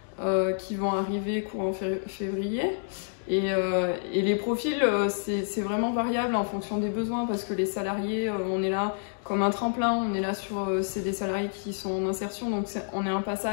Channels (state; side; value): silent; right; digital silence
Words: qui vont arriver courant février. Et les profils, c'est vraiment variable en fonction des besoins parce que les salariés, on est là comme un tremplin, on est là c'est des salariés qui sont en insertion, donc on est un